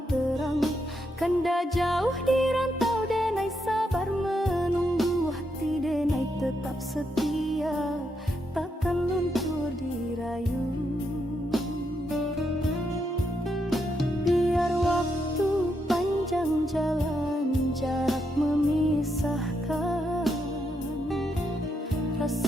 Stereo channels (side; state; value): both; normal; correlation 0.80